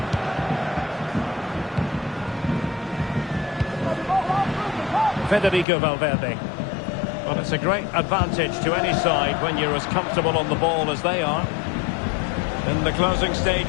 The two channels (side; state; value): right; drops out; at 5.7 s